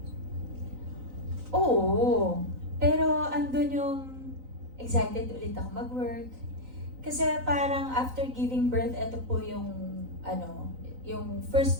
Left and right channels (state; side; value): late; left; 3.9 ms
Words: Oo. Pero andun yung excited ulit ako mag-work. Kasi parang after giving birth, ito po yung yung